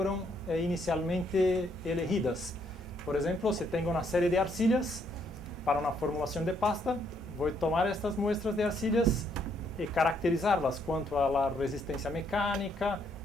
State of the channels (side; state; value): both; normal; correlation 0.71